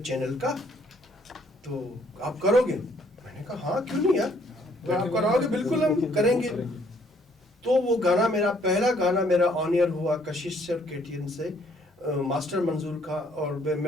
چینل کا تو آپ کرو گے. میں نے کہا ہاں کیوں نہیں یار, تو آپ کراؤ گے, بالکل ہم کریں گے. تو وہ گانا میرا پہلا گانا میرا آن ایئر ہوا کشش سے اور KTN سے, ماسٹر منظور کا. اور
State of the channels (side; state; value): both; normal; correlation 0.65